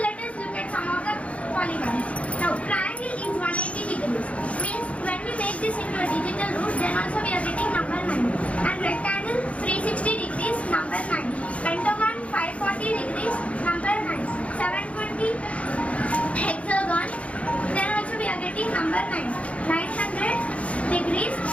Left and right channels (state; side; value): late; right; 0.064 ms